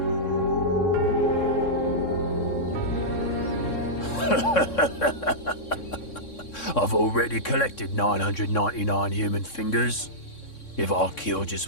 I've already collected 999 human fingers. If I kill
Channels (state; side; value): late; right; 3.6 ms